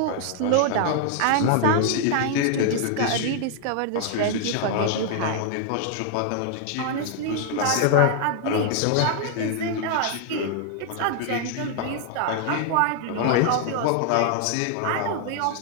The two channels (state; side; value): different; both; correlation 0.00